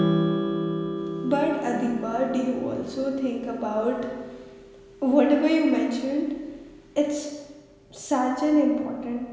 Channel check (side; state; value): both; identical; correlation 1.00